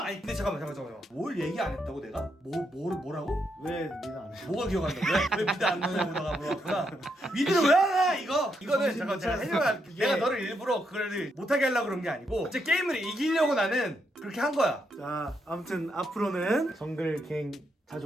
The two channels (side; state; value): both; normal; correlation 0.79